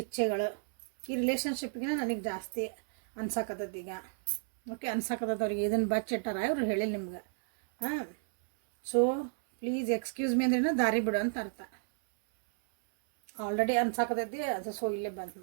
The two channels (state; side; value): silent; left; 56 dB below the other